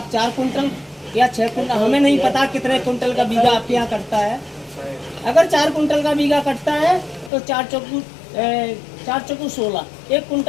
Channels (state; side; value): drops out; right; at 7.3 s